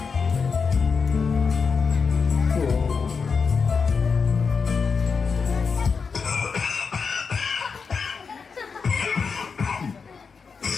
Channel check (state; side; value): quieter; right; 5.4 dB